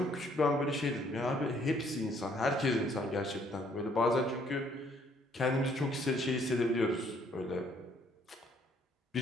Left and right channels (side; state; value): both; normal; correlation 0.65